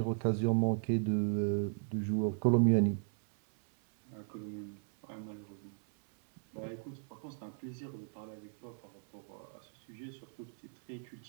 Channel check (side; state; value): left; silent; 53 dB below the other